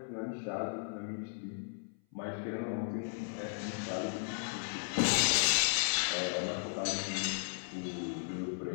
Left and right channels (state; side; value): silent; right; 54 dB below the other